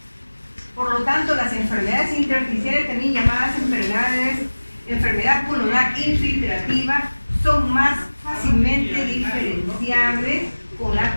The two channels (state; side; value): inverted; both; correlation -1.00